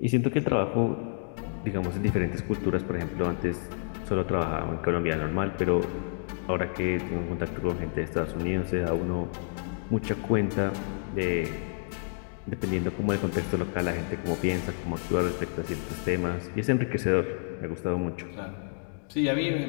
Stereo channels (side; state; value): right; silent; digital silence